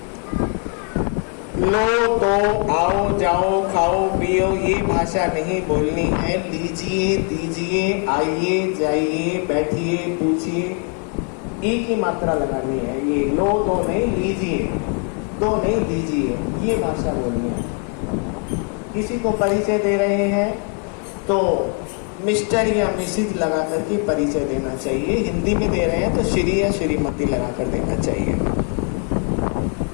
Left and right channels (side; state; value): right; quieter; 39.8 dB